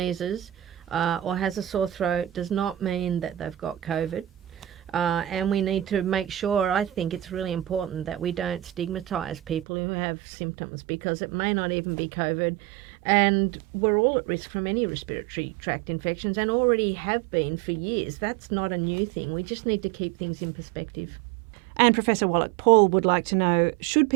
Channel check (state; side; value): drops out; left; at 9.7 s